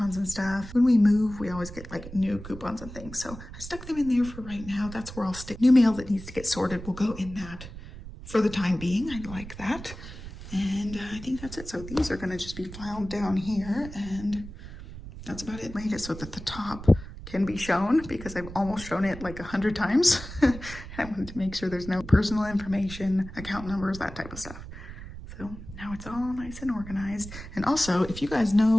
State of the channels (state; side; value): noise; right; rumble, 13 dB below the sound